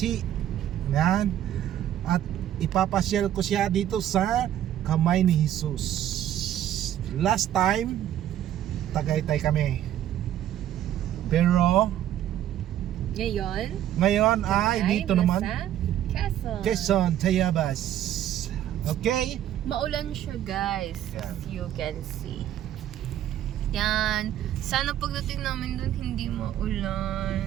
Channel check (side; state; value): left; quieter; 11.6 dB